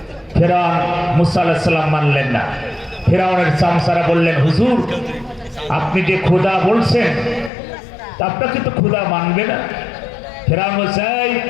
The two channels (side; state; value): right; drops out; at 7.5 s